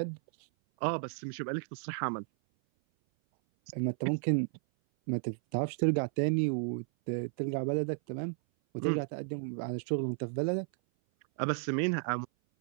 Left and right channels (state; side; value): silent; left; 56 dB below the other